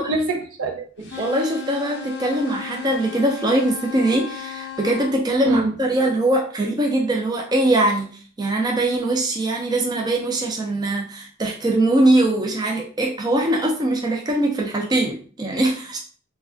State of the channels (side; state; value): both; normal; correlation 0.61